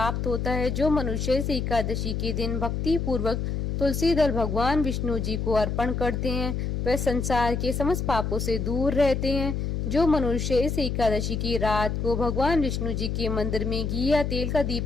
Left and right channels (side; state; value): left; noise; hum, 2 dB below the sound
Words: होता है। जो मनुष्य इस एकादशी के दिन भक्ति पूर्वक तुलसी दल भगवान विष्णु जी को अर्पण करते हैं, वे संसार के समस्त पापों से दूर रहते हैं। जो मनुष्य इस एकादशी की रात को भगवान विष्णु जी के मंदिर में घी या तेल का